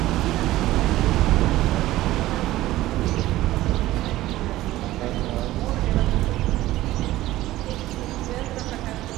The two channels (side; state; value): left; quieter; 16.0 dB